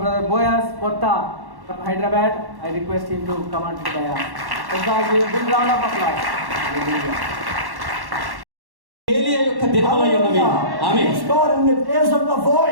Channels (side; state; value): left; late; 1.1 ms